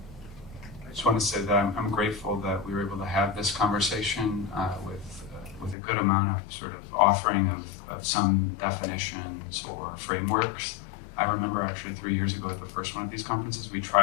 just want to say that I'm grateful that we were able to have this conversation with a good amount of sort of offering of some definitions or frameworks. I remember actually 3 years ago at the first one of these conferences, we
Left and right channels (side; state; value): right; drops out; at 5.8 s